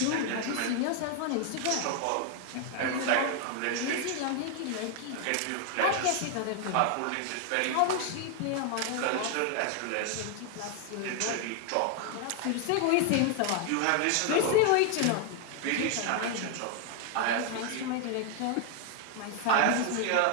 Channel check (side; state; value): both; different; correlation 0.00